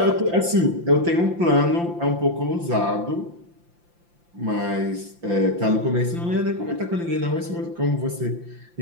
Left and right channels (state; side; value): late; left; 5.8 ms